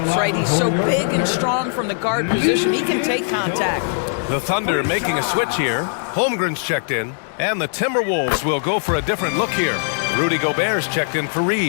right? He's so big and strong from the guard position. He can take contact. The Thunder making a switch here. Holmgren's checked in. And the Timberwolves will go for a different look here. Rudy Gobert's checked in for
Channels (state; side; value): silent; right; digital silence